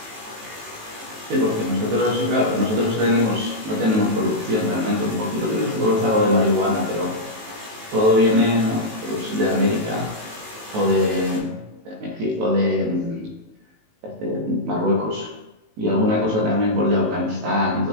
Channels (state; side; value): late; left; 18 ms